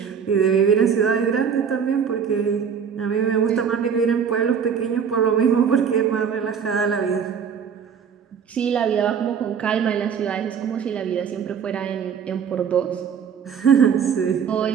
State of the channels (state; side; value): quieter; left; 7.1 dB